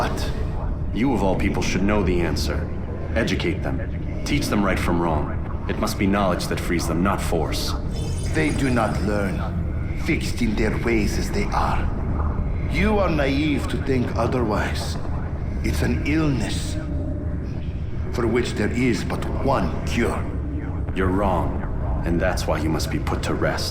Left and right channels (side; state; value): both; identical; correlation 1.00